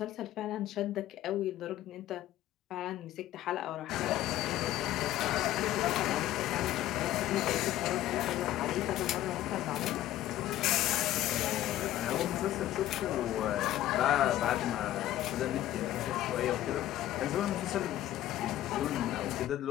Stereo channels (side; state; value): right; quieter; 13.8 dB